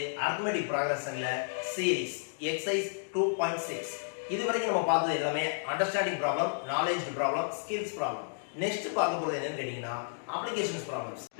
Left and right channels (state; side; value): silent; right; digital silence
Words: arithmetic progressionல series exercise 2.6. இதுவரைக்கும் நம்ம பார்த்தது எல்லாமே understanding problem, knowledge problem, skills problem. Next பார்க்க போறது என்னன்னு கேட்டிங்கனா applications problems.